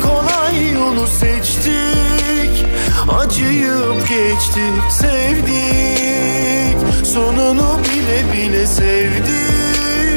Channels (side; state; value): both; inverted; correlation -1.00